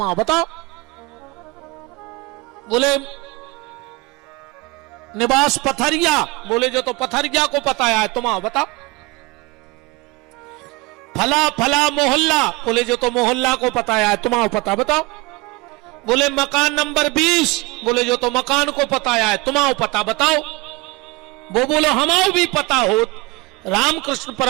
आओ बताओ। बोले निवास पथरिया। बोले जो तो पथरिया को पता है तुम आओ बताओ। फला फला मोहल्ला। बोले जो तो मोहल्ला को पता है तुम आओ पता बताओ। बोले मकान नंबर 20। बोले जो तो मकान को पता है तुम आओ पता बताओ। वो बोलो हमारा भी पता हो। रामकृष्ण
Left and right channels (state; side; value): quieter; left; 23.8 dB